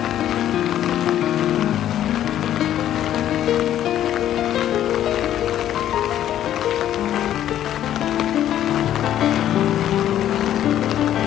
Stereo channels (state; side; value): quieter; right; 11.5 dB